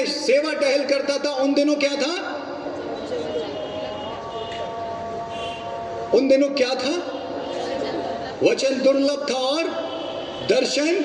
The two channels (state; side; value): identical; both; correlation 1.00